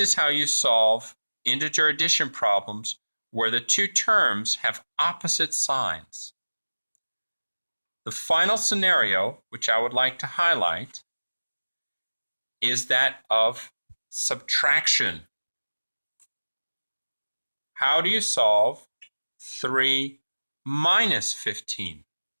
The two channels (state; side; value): inverted; both; correlation -1.00